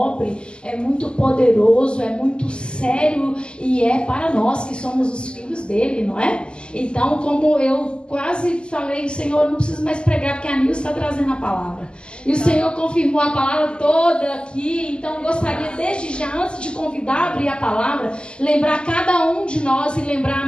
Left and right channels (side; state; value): right; late; 0.049 ms